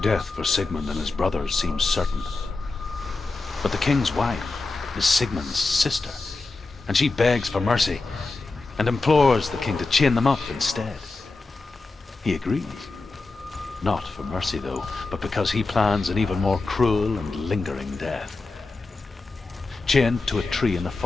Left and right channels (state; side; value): quieter; right; 3.6 dB